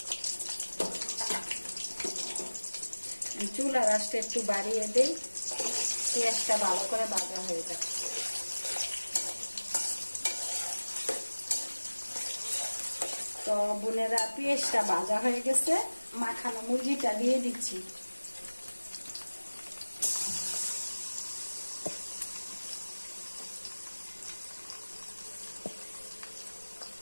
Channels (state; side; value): inverted; both; correlation -1.00